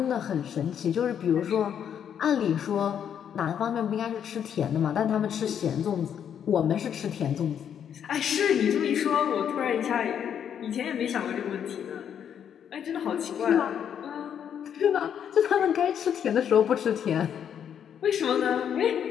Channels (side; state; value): right; quieter; 8.7 dB